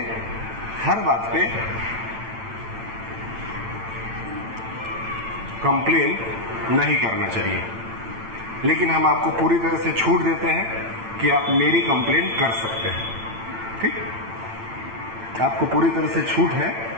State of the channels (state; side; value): late; left; 8.9 ms